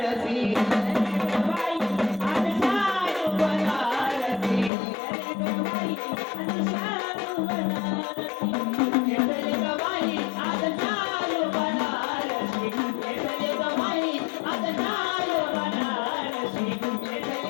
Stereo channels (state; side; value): drops out; right; at 4.7 s